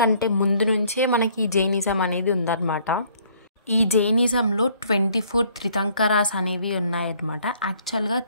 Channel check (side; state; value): both; inverted; correlation -0.62